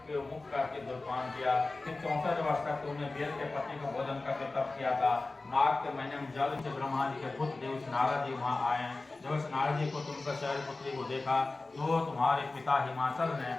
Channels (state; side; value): quieter; right; 3.3 dB